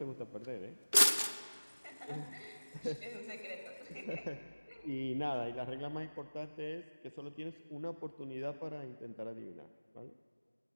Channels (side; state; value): both; inverted; correlation -1.00